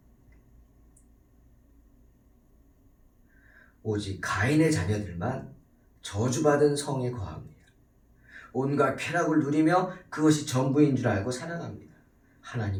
오직 가인의 자녀들만 저주받은 성에 거합니다. 온갖 쾌락을 누리며 그것이 전부인 줄 알고 살아갑니다.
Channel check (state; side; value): identical; both; correlation 1.00